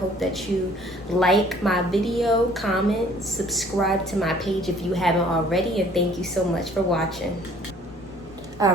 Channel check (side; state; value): left; noise; hum, 29 dB below the sound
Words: that you like my video, comment, subscribe to my page if you haven't already, and thank you so much for watching.